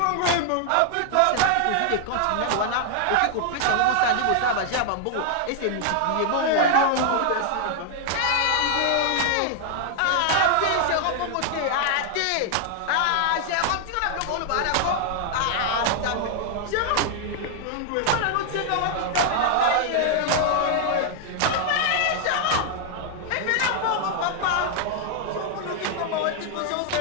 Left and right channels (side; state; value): both; different; correlation 0.00